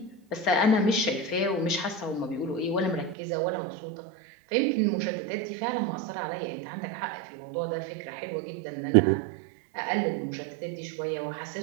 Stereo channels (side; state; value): left; drops out; at 3.2 s